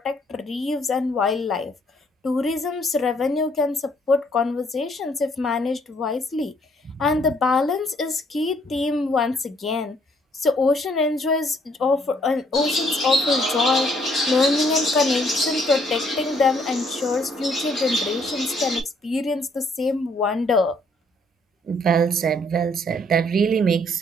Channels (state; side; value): normal; both; correlation 0.66